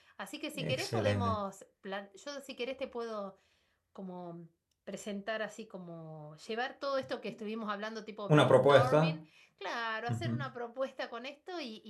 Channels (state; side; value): identical; both; correlation 1.00